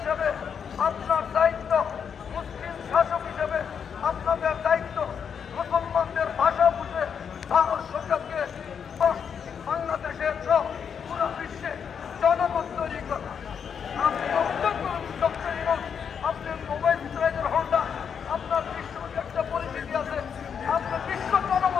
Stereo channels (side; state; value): right; quieter; 7.2 dB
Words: আপনার দায়িত্ব, মুসলিম শাসক হিসেবে আপনাদের দায়িত্ব মুসলমানদের ভাষা বুঝে ভারত সরকারকে বাংলাদেশের সহ পুরো বিশ্বে জনমত তৈরি করা। আপনি অভিযোগ করুন ডক্টর ইউনূস, আপনার মোবাইল ইসরায়েলের হোল্ডার, আপনার বিশ্ব একটা পরিচিতি আছে, আপনি বিশ্ব